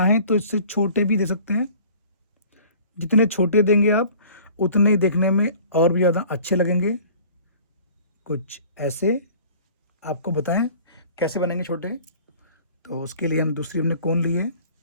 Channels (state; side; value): inverted; both; correlation -0.48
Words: तो इससे छोटे भी दे सकते हैं। जितने छोटे देंगे आप उतने ही देखने में और भी ज़्यादा अच्छे लगेंगे कुछ ऐसे। आपको बताएं कैसे बनेंगे छोटे। तो उसके लिए हम दूसरी हमने कोन ली है